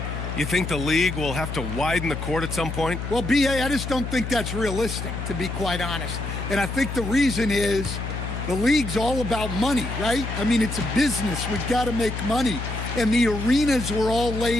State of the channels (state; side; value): noise; left; hum, 5 dB below the sound